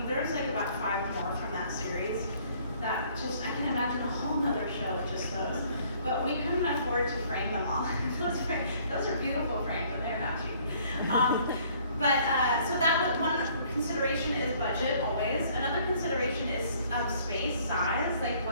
there's like about 5 more from that series that just, I can imagine a whole nother show with just those. But we couldn't afford to frame them all. Those are beautiful frames, and they're not cheap. So that was one consideration is budget, always. Another consideration is space, size. Like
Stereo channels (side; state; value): both; inverted; correlation -0.60